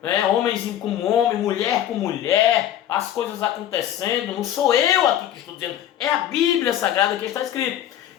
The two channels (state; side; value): quieter; right; 11.3 dB